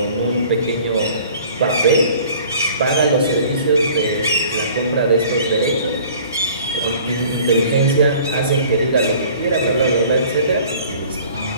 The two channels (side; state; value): both; inverted; correlation -0.50